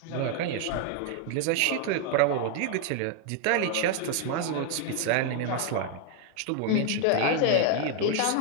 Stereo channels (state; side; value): different; both; correlation 0.01